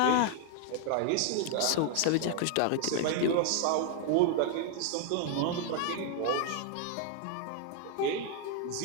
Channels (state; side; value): different; both; correlation 0.00